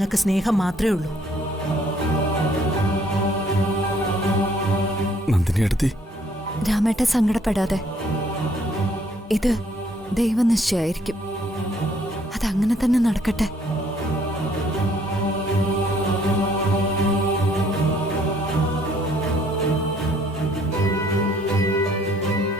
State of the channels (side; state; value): both; normal; correlation 0.63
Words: സ്നേഹം മാത്രമേ ഉള്ളൂ. നന്ദിനിയെടുത്തി, രാമേട്ട സങ്കടപ്പെടാതെ. ഇത് ദൈവനിശ്ചയായിരിക്കും. അതങ്ങനെ തന്നെ നടക്കട്ടെ.